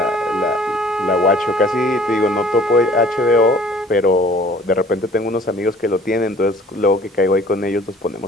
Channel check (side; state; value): both; normal; correlation 0.52